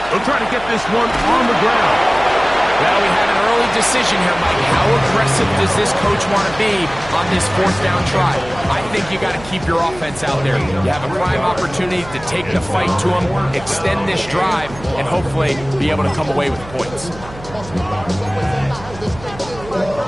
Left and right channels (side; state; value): right; noise; hum, 16 dB below the sound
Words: They'll try to get this one on the ground. Well, we have an early decision here, Mike. How aggressive does this coach want to be on this 4th down try? I think you got to keep your offense out there. You have a prime opportunity to take the fight to them, extend this drive, and hopefully be able to come away with points.